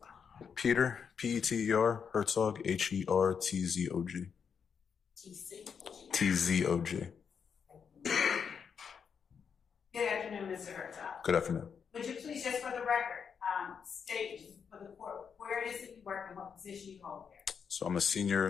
Peter, Peter, Herzog, Hertzog. TZOG. Good afternoon, Mr. Herzog. Good afternoon. Would you please, just for the record, state for the court where it is that you work and what position you hold there? So I'm a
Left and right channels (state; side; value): quieter; right; 6.7 dB